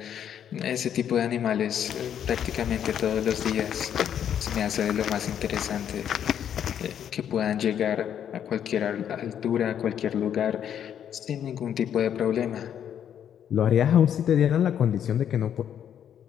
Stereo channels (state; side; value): quieter; right; 9.3 dB